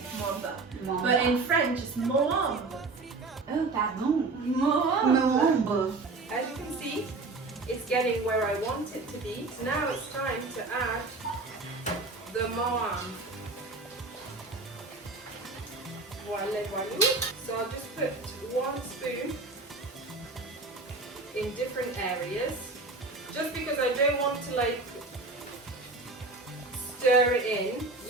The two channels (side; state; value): left; quieter; 3.5 dB